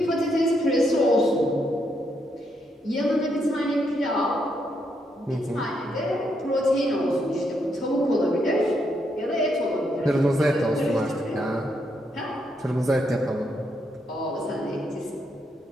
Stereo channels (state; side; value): normal; both; correlation 0.78